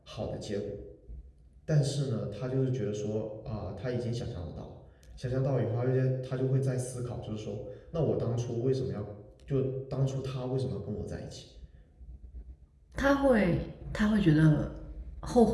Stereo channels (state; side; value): identical; both; correlation 1.00